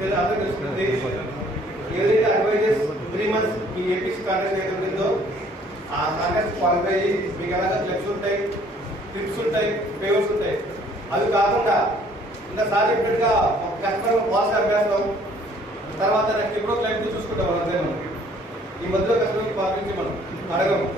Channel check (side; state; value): both; normal; correlation 0.59